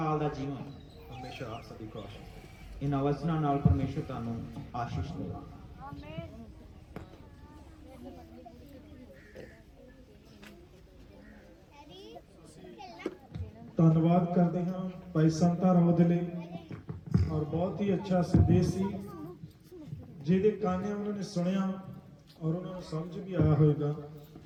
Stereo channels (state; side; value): identical; both; correlation 1.00